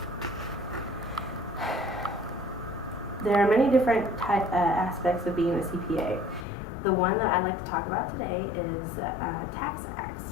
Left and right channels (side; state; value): right; drops out; at 6.5 s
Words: are many different aspects of being a CPA. The one that I'd like to talk about today is tax